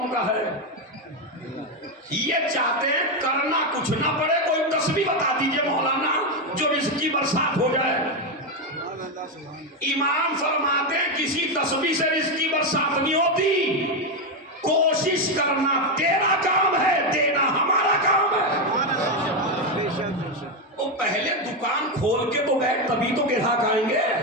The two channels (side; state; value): both; normal; correlation 0.08